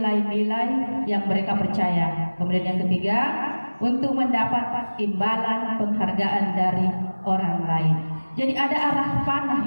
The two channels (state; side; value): inverted; both; correlation -1.00